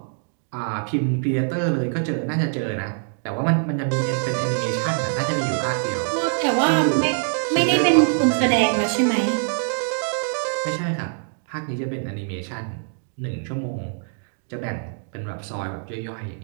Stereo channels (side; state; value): left; silent; digital silence